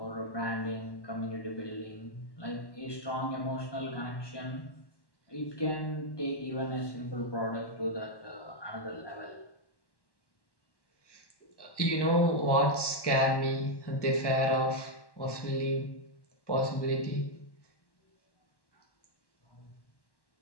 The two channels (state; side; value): late; right; 1.1 ms